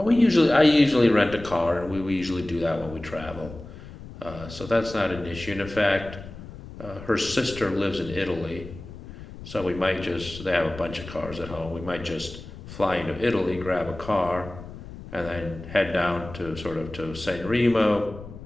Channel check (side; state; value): left; noise; rumble, 14 dB below the sound